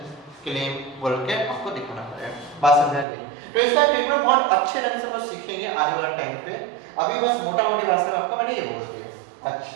क्लेम बोल के आपको दिखाना पड़ेगा। बात समझ गई? तो इसका ट्रीटमेंट बहुत अच्छे ढंग से हम सीखेंगे आने वाले टाइम पे। अभी बस मोटा मोटी भाषा में आपको मैंने ये बोल दिया।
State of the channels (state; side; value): drops out; left; at 3.1 s